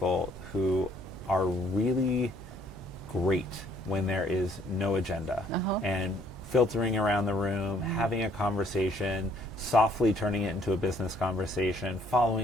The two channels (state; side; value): noise; right; hum, 17 dB below the sound